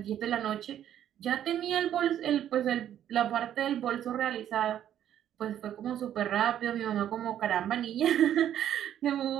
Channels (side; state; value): left; quieter; 10.7 dB